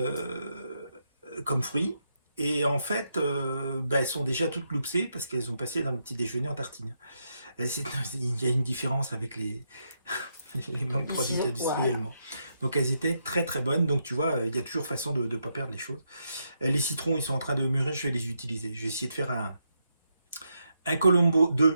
fruits. Et en fait, elles sont déjà toutes loupsées parce qu'elles ont passé dans le petit déjeuner en tartine. Il y a une différence avec les mangues produites industriellement. Donc elles étaient très très bonnes. Donc tu vois, il y a toujours façon de ne pas perdre les choses. Les citrons, ils sont en train de mûrir, je vais les utiliser. Je vais essayer de faire un Colombo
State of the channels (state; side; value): inverted; both; correlation -0.81